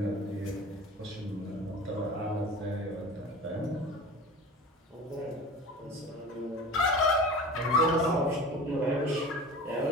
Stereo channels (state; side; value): normal; both; correlation 0.37